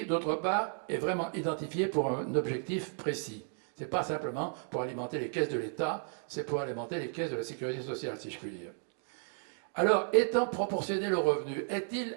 d'autre part, est vraiment identifié pour un objectif précis. Ce n'est pas simplement pour alimenter les caisses de l'État, c'est pour alimenter les caisses de la sécurité sociale, si je puis dire. Alors, étant proportionnel au revenu, est-il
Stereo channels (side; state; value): left; silent; 55 dB below the other